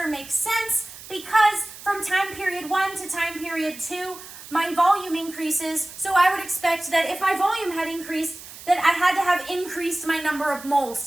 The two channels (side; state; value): right; noise; hiss, 16 dB below the sound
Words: makes sense because from time period 1 to time period 2, my volume increases. So I would expect that if my volume had increased, that I had to have increased my number of